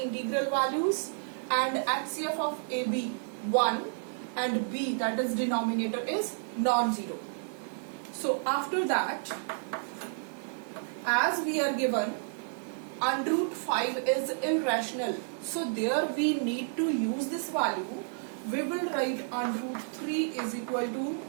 values and HCF of a, b 1 and b, that is denominator, is non-zero. So after that, as we are given under root 5 is irrational, so there we need to use this value. We will write under root 3 is equal to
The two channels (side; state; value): left; silent; 57 dB below the other